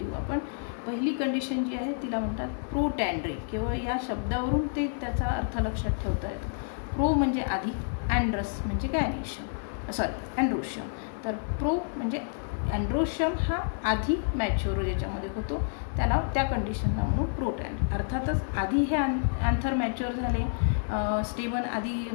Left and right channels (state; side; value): silent; right; digital silence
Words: आपण. पहिली कंडिशन जी आहे तिला म्हणतात प्रोटँड्री. केवळ या शब्दावरून ते त्याचा अर्थ लक्षात ठेवता येतो. प्रो म्हणजे आधी, अँड्रस म्हणजे अँड्रोशियम. तर प्रो म्हणजे अँड्रोशियम हा आधी मॅच्युअर ज्याच्यामध्ये होतो त्याला त्या कंडिशनला म्हणून प्रोटँड्री. अर्थातच आधी हे अँथर मॅच्युअर झाले, स्टेमन आधी